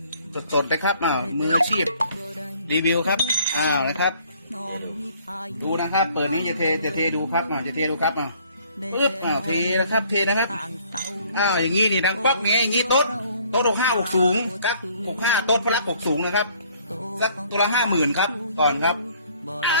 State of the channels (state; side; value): inverted; both; correlation -0.60